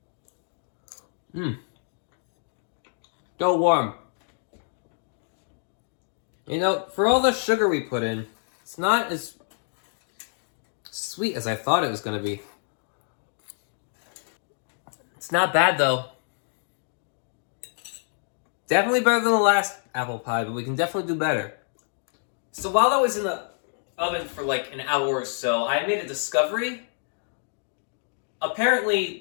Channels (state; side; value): silent; right; digital silence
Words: Still warm. You know, for all the sugar we put in, it's not as sweet as I thought it was going to be. It's not bad, though. Definitely better than the last apple pie, but we can definitely do better. So while I was in the oven for like an hour or so, I made a discovery.